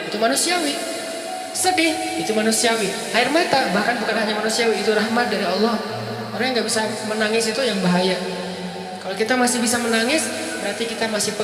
itu manusiawi. Sedih itu manusiawi. Air mata bahkan bukan hanya manusiawi, itu rahmat dari Allah. Orang yang nggak bisa menangis itu yang bahaya. Kalau kita masih bisa menangis, berarti kita masih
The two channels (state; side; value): identical; both; correlation 1.00